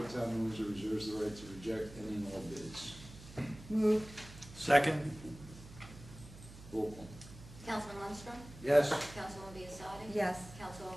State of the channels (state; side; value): noise; right; hum, 16 dB below the sound